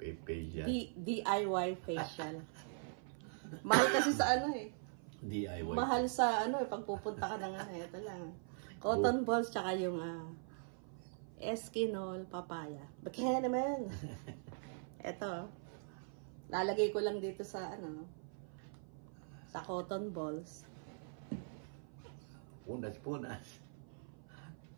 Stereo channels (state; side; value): silent; left; 50 dB below the other